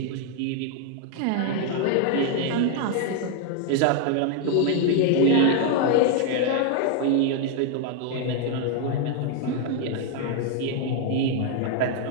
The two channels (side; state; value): both; different; correlation 0.00